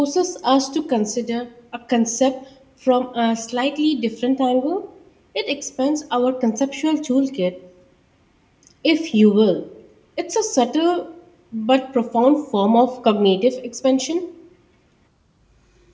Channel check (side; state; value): both; identical; correlation 1.00